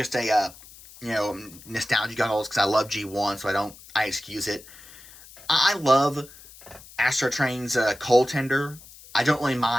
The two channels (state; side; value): noise; left; hiss, 20 dB below the sound